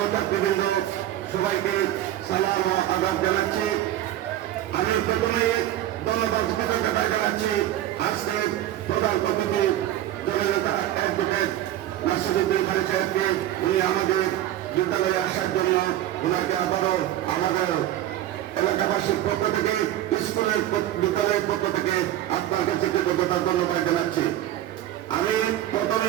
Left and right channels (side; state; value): left; quieter; 13.1 dB